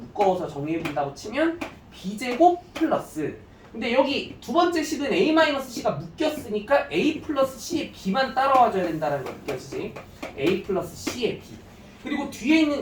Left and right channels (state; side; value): identical; both; correlation 1.00